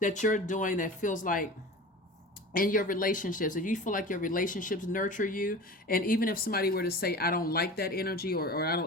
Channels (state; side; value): normal; both; correlation 0.35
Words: you're doing that feels like, in your relationships, if you feel like your relationships nurture you, and even if somebody were to say, I don't like that energy, or I